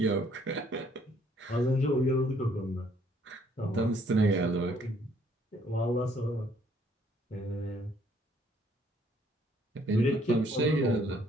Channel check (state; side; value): normal; both; correlation 0.64